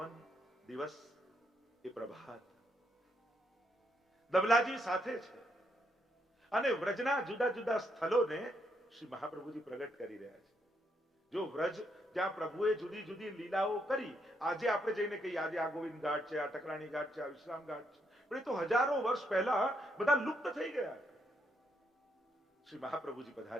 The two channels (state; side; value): normal; both; correlation 0.76